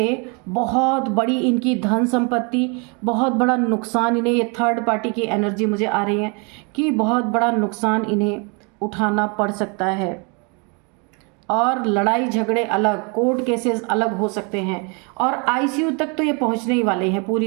बहुत बड़ी इनकी धन संपत्ति, बहुत बड़ा नुकसान इन्हें, ये थर्ड पार्टी की एनर्जी मुझे आ रही है कि बहुत बड़ा नुकसान इन्हें उठाना पड़ सकता है और लड़ाई झगड़े अलग, कोर्ट केसेस अलग हो सकते हैं और ICU तक तो ये पहुंचने ही वाले हैं पूरी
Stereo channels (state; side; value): quieter; left; 33.2 dB